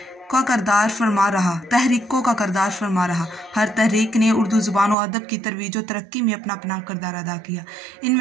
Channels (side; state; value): left; drops out; at 5.0 s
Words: का किरदार फरमा रहा। हर तहरीक ने उर्दू ज़ुबान और अदब की तरवीज और तरक्की में अपना अपना किरदार अदा किया।